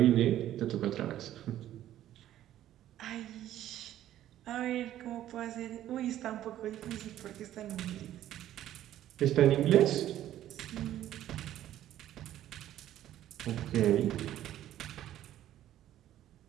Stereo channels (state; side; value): quieter; left; 12.5 dB